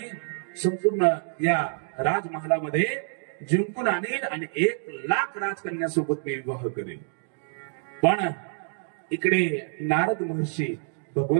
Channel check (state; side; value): silent; left; digital silence